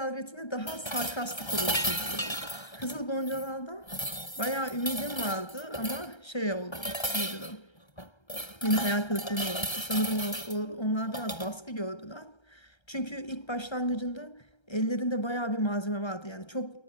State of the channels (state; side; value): late; right; 1.3 ms